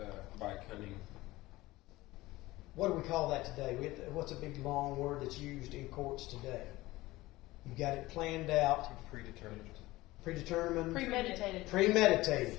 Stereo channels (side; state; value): right; quieter; 18.8 dB